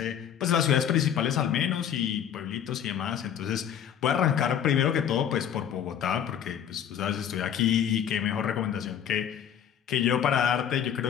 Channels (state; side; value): quieter; right; 9.2 dB